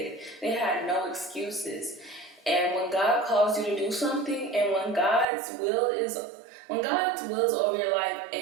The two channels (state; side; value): drops out; left; at 5.2 s